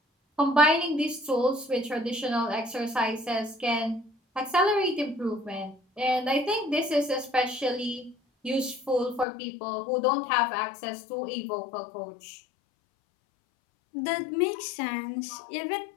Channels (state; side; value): drops out; right; at 9.2 s